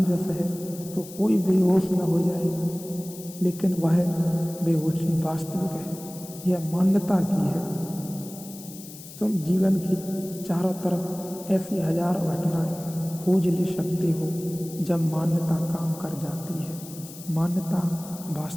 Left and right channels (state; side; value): noise; left; hiss, 16 dB below the sound